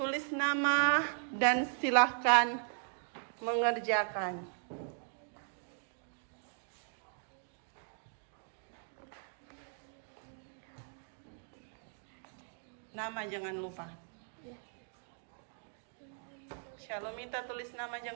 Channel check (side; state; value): left; silent; 52 dB below the other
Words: nama dan silahkan mengerjakan. Nama jangan lupa. Shalomita tulis nama